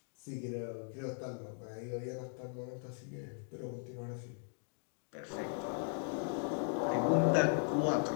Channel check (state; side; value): silent; right; 52 dB below the other